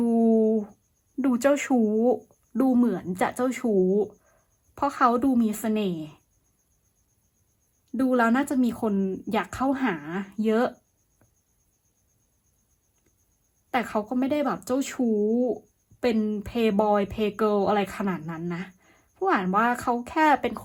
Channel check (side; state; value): both; identical; correlation 1.00